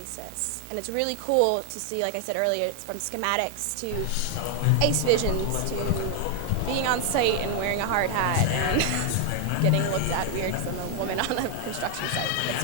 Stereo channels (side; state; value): both; different; correlation 0.00